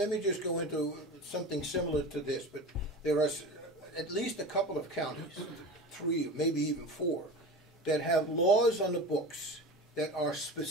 me just go into something similar to this. But there are at least a couple of counties, 3, maybe even 4, that have laws on the books that are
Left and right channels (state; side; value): normal; both; correlation 0.31